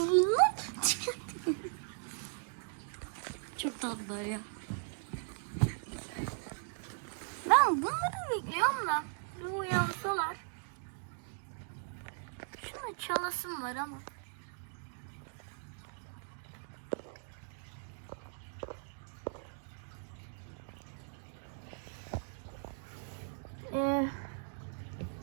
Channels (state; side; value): silent; left; digital silence